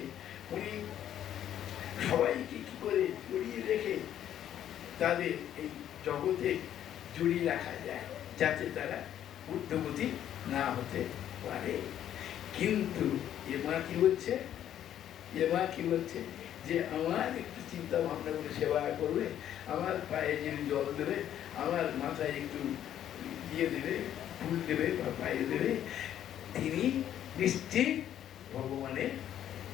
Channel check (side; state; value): right; quieter; 10.8 dB